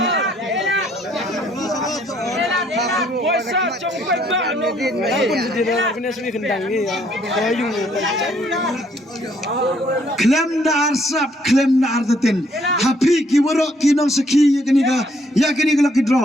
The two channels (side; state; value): both; normal; correlation 0.67